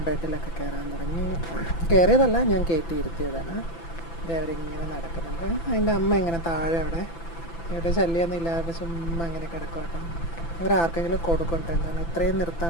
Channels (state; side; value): late; right; 6.0 ms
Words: ബെഡിലൊക്കെ കയറാൻ തുടങ്ങി. കയറിയതല്ല, ഞാൻ കയറ്റി ഇരുത്തിയതാണ്. ഇത് അവരിങ്ങനെ നടക്കുന്നുണ്ട്. അതിൻ്റെ അമ്മ ഇങ്ങനെ താഴെ ഇവിടെ ശല്യമൊന്നും ഇല്ലാതെ ചുമ്മാ ഇങ്ങനെ കിടക്കും കേട്ടോ. ഇവരാർക്കെങ്കിലും കൊടുക്കട്ടെ, എന്താണ് ഇത്രയും